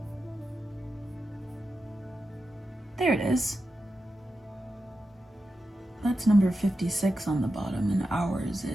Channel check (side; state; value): both; normal; correlation 0.90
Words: There it is. That's number 56 on the bottom, and ours